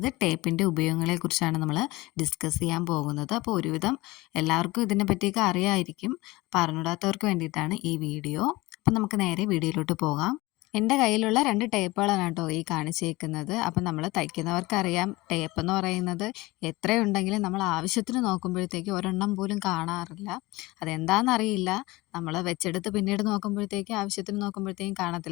ടേപ്പിൻ്റെ ഉപയോഗങ്ങളെക്കുറിച്ചാണ് നമ്മൾ ഡിസ്കസ് ചെയ്യാൻ പോകുന്നത്. അപ്പോൾ ഒരുവിധം എല്ലാവർക്കും ഇതിനെ പറ്റിയൊക്കെ അറിയാമായിരിക്കും. അപ്പോൾ അറിഞ്ഞൂടാത്തവർക്ക് വേണ്ടിയിട്ടാണ് ഈ വീഡിയോ. അപ്പം നമുക്ക് നേരെ വീഡിയോയിലോട്ട് പോകാം. എൻ്റെ കയ്യിലുള്ള 2 ടേപ്പുകളാണ് കേട്ടോ ഈ കാണിച്ചേക്കുന്നത്. അപ്പം നമ്മൾ തയ്ക്കുന്നവർക്കറിയാം, ടേപ്പ് എന്ന് പറയുന്നത് എത്രയുണ്ടെങ്കിലും നമ്മൾ ആവശ്യത്തിന് നോക്കുമ്പോഴത്തേക്ക് ഒരെണ്ണം പോലും കാണാറില്ല. അതെന്താണെന്നറിയില്ല. നമ്മൾ വെച്ചെടുത്ത് പിന്നീട് നോക്കുമ്പോഴത്തേക്ക് ആവശ്യത്തിന് നോക്കുമ്പോഴത്തേക്കും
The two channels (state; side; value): quieter; right; 20.9 dB